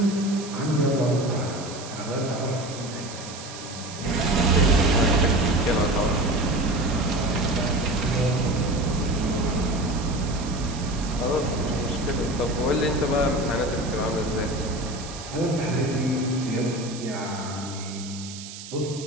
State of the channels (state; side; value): noise; right; hiss, 13 dB below the sound